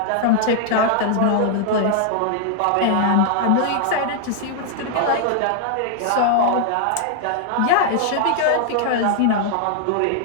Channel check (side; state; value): both; different; correlation -0.01